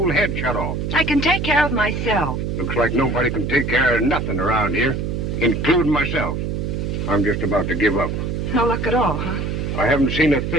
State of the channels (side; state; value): right; noise; hum, 2 dB below the sound